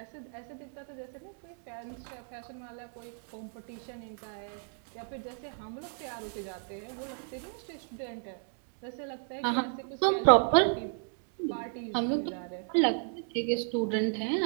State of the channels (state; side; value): silent; left; 56 dB below the other